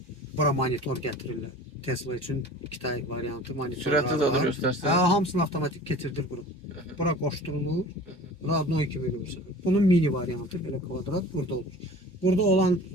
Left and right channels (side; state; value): both; normal; correlation 0.42